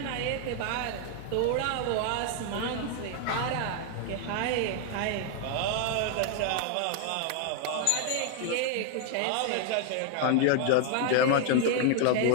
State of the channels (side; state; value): both; different; correlation 0.00